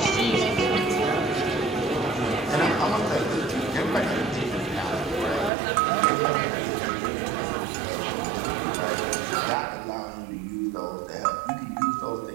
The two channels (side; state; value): left; drops out; at 5.5 s